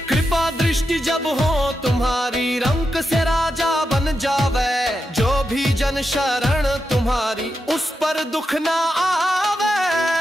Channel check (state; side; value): normal; both; correlation 0.87